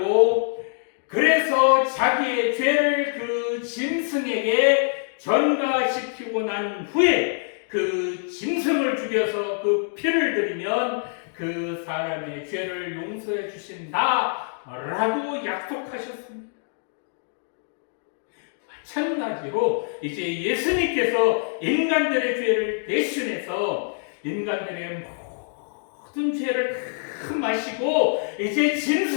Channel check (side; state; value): right; silent; digital silence